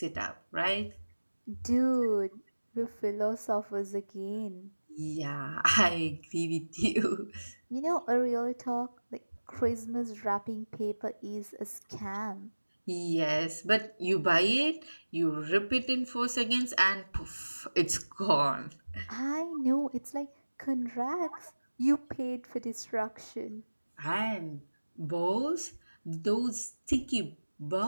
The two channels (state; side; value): inverted; both; correlation -1.00